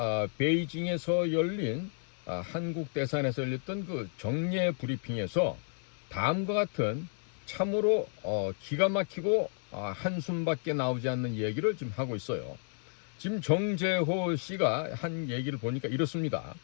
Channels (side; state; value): right; silent; 56 dB below the other